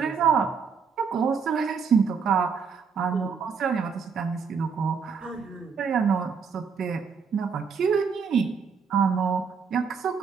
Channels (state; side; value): quieter; left; 6.0 dB